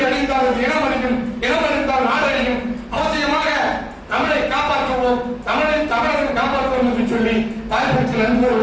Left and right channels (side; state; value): both; identical; correlation 1.00